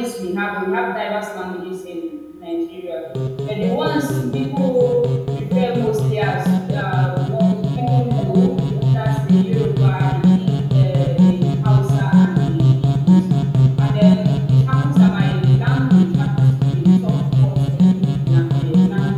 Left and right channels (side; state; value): both; identical; correlation 1.00